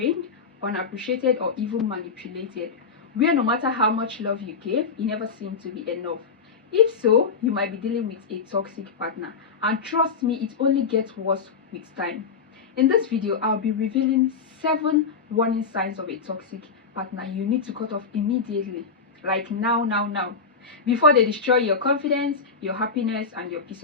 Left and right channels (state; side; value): quieter; right; 5.1 dB